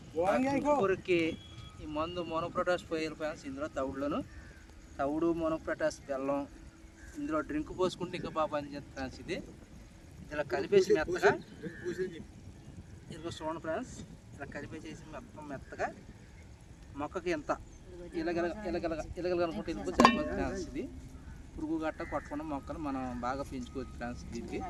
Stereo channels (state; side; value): identical; both; correlation 1.00